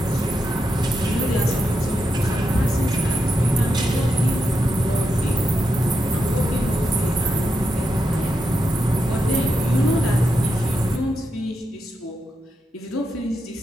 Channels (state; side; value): normal; both; correlation 0.85